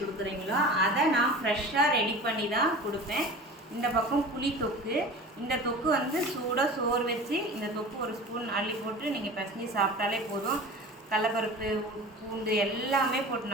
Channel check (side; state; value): both; normal; correlation 0.37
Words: கொடுக்குறீங்களோ அதை நான் ஃப்ரெஷ்ஷாக ரெடி பண்ணி தான் கொடுப்பேன். இந்த பக்கம் புளி தொக்கு. இந்த தொக்கு வந்து சூடாக சோறு வச்சு இந்த தொக்கு ஒரு ஸ்பூன் அள்ளி போட்டு நீங்கள் பசங்கி சாப்பிட்டாலே போதும். கடலப்பருப்பு, பூண்டு எல்லாமே போட்டு